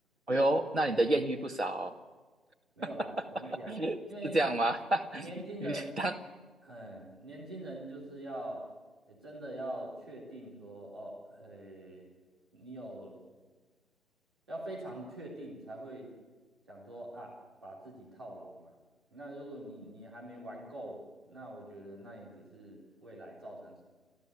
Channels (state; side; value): normal; both; correlation 0.79